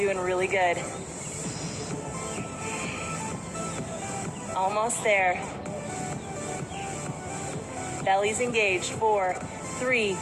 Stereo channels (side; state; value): both; identical; correlation 1.00